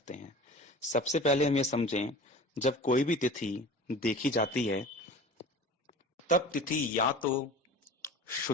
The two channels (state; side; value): normal; both; correlation 0.39